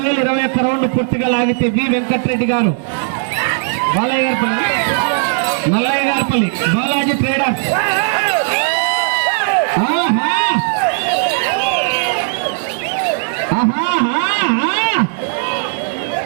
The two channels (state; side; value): silent; left; 65 dB below the other